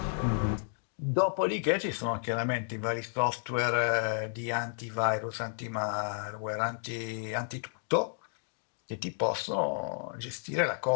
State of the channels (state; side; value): silent; right; digital silence